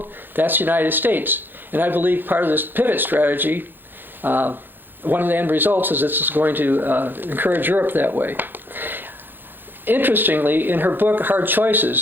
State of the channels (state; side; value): late; left; 0.095 ms